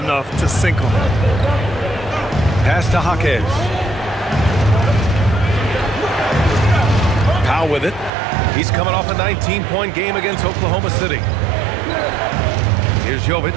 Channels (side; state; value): left; drops out; at 8.1 s